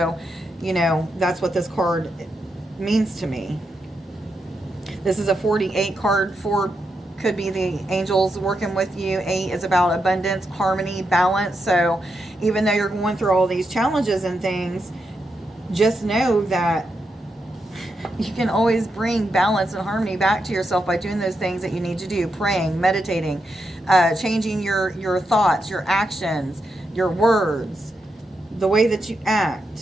you know, that's what this card means to me. This is a 48 card. 4 could be the angels working with you. 8 is about abundance, harmony, balance. So even though you're going through all these challenges and things, just know that you can always bring balance and harmony back to yourself by doing those things that you need to do. Praying, meditating, changing your thoughts, your actions, your words, the way that you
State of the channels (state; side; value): normal; both; correlation 0.84